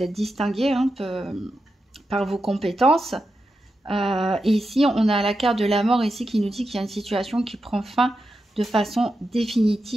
êtes distingué, hein, par vos compétences. Et ici, on a la carte de la mort ici qui nous dit qu'il y a une situation qui prend fin de façon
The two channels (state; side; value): normal; both; correlation 0.88